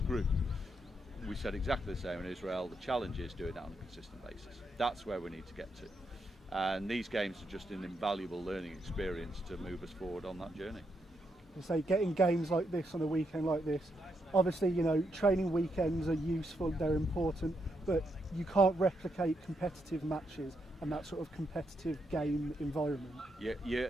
group. We said exactly the same in Israel. The challenge is doing that on a consistent basis. That's where we need to get to. And these games are just an invaluable learning experience to move us forward on that journey. Say getting games like this on a weekend like this, obviously training weekends are useful, they're important, but you can't replicate competitive matches and that sort of competitive game environment. Yeah, you're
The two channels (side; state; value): both; normal; correlation 0.80